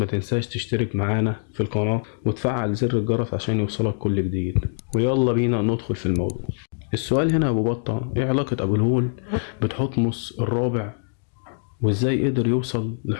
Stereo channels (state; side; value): silent; right; digital silence